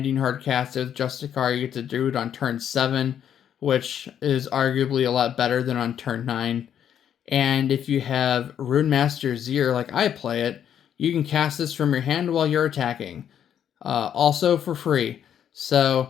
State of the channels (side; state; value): right; quieter; 9.3 dB